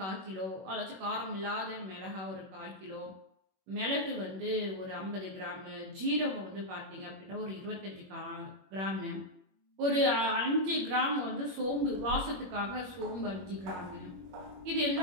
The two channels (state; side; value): late; left; 21 ms